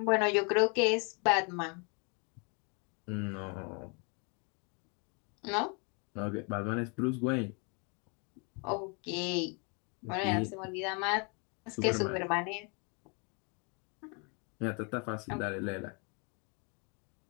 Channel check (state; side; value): quieter; right; 34.7 dB